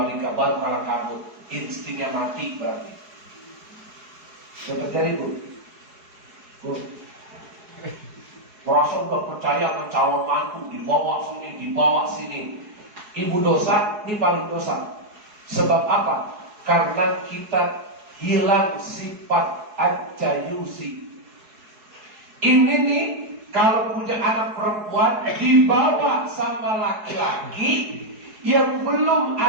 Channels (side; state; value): left; late; 4.7 ms